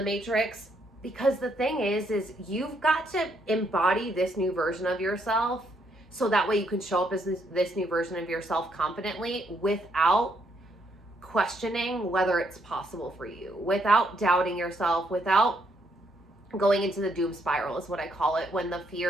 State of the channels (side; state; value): both; normal; correlation 0.73